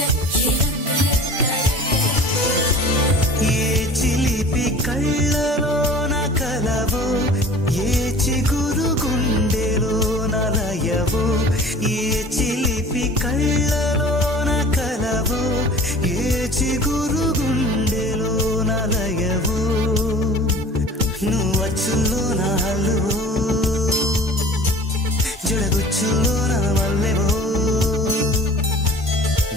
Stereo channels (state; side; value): normal; both; correlation 0.43